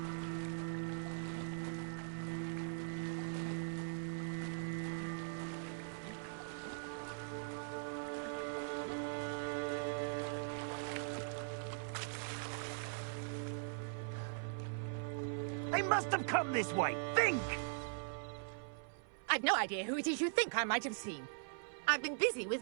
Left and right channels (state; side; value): silent; left; 50 dB below the other